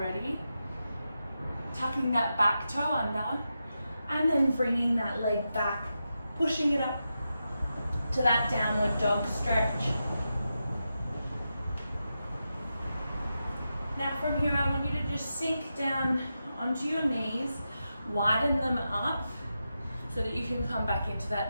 Tucking that back toe under and then bringing that leg back, pushing it up to that downward dog stretch. Now from here I want you to just sink down onto your knees, widen them up so that you can come back into that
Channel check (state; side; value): inverted; both; correlation -0.89